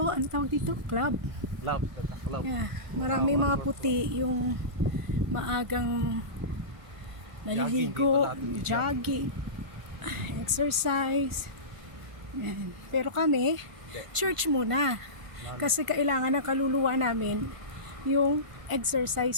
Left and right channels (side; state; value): left; late; 1.5 ms